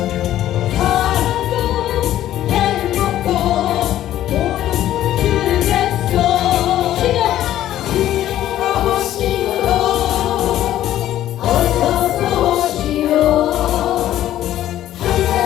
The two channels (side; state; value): right; quieter; 12.8 dB